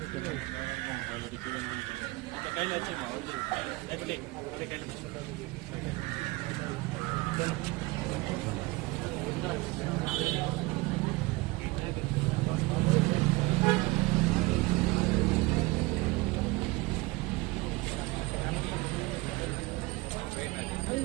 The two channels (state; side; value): quieter; left; 22.3 dB